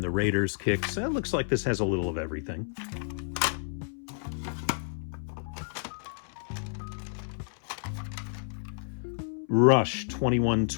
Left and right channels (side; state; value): right; silent; 58 dB below the other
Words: the Raiders Kicks. It looks like this has a little of everything. Rush